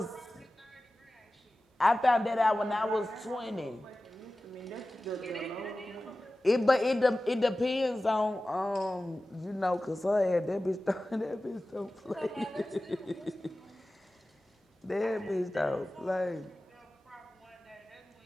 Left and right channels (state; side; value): normal; both; correlation 0.96